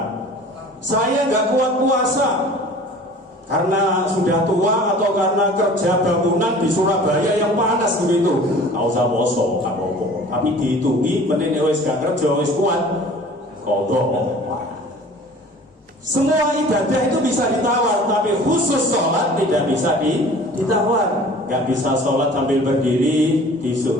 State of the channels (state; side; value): normal; both; correlation 0.45